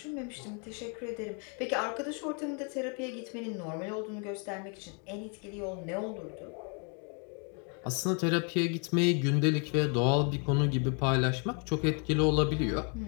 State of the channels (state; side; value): quieter; right; 37.8 dB